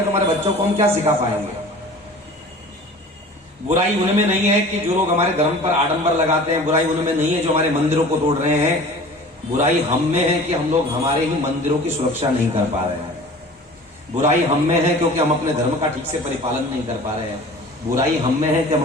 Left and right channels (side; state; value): both; normal; correlation 0.42